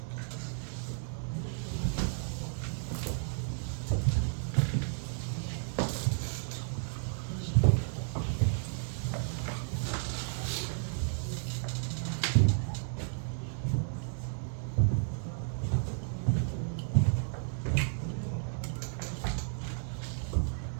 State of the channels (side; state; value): left; silent; digital silence